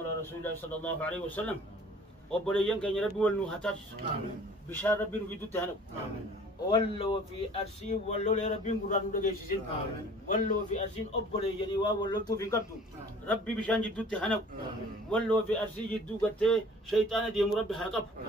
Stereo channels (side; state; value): both; normal; correlation 0.49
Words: على رسول الله صلى الله عليه وسلم. وبريان كان ربي والنهتاج بشار ربي نفيدو تهنو ولو في أرسي ولو لربي قران ودجيسين ولو في أرسين أبريان ولو تو في قبض ربي بشان جدو تهنو ولو في أرسي جدو قلت شيطان ديم ربي هاقب